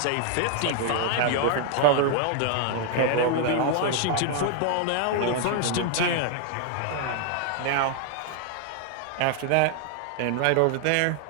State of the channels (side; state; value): both; different; correlation 0.00